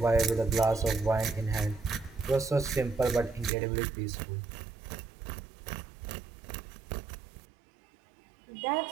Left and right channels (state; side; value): drops out; left; at 3.5 s